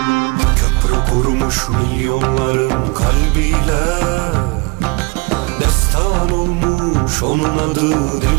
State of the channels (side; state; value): left; quieter; 27.7 dB